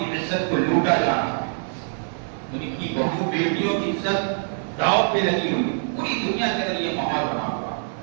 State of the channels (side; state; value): left; silent; 63 dB below the other